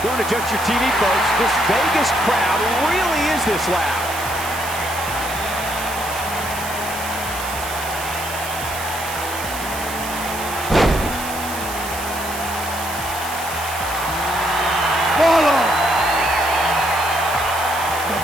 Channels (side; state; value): right; noise; hiss, 10 dB below the sound